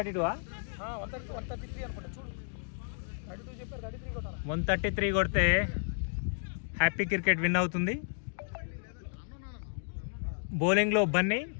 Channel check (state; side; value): silent; right; digital silence